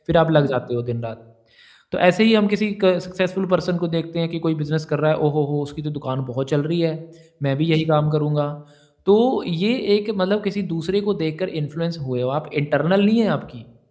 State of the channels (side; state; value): both; identical; correlation 1.00